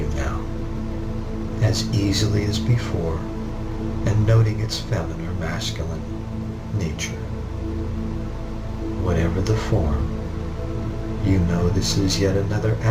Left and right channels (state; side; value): identical; both; correlation 1.00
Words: now, as easily as before, and noting its feminine or masculine nature. Whatever the form, you know this is yet another